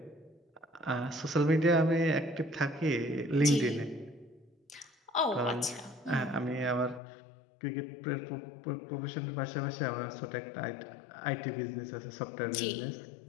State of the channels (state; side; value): drops out; right; at 7.0 s